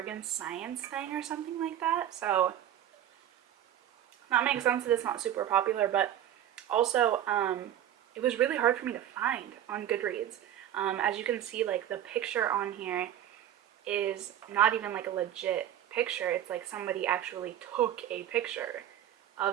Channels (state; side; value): quieter; left; 11.2 dB